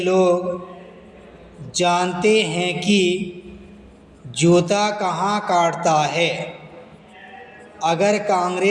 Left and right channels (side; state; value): both; identical; correlation 1.00